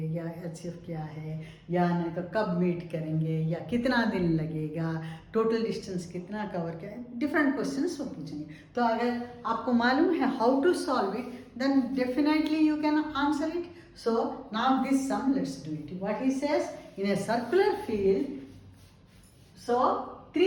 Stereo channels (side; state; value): both; identical; correlation 1.00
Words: या एचसीएफ क्या है, या नहीं तो कब मीट करेंगे, या कितना दिन लगेगा, टोटल डिस्टेंस कितना कवर किया, डिफरेंट क्वेश्चंस वो पूछेंगे। तो अगर आपको मालूम है how to solve it, then definitely you can answer it. So now this sum, let's do it. What he says, in a circular field, so